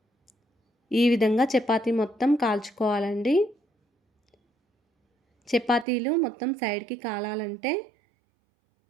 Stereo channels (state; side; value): drops out; left; at 5.9 s